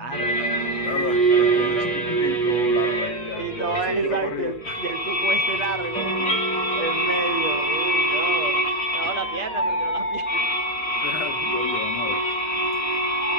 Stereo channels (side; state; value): right; late; 8.4 ms